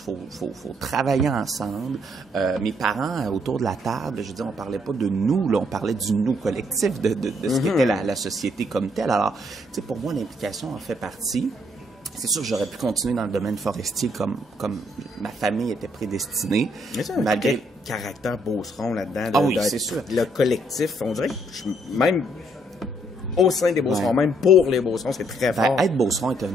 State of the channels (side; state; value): both; normal; correlation 0.70